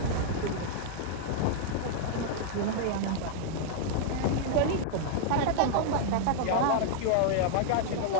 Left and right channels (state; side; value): different; both; correlation -0.01